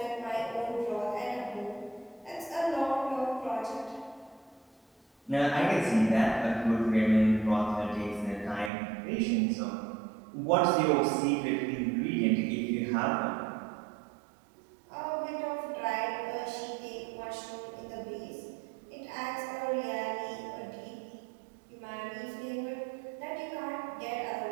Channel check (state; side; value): drops out; left; at 8.7 s